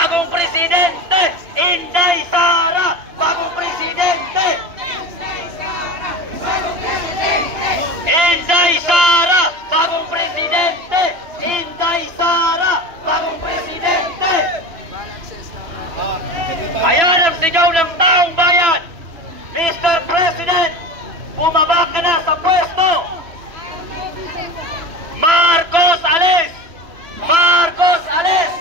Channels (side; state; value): left; late; 2.9 ms